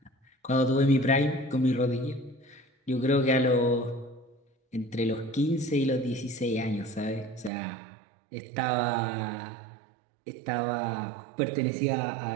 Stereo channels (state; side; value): drops out; left; at 7.5 s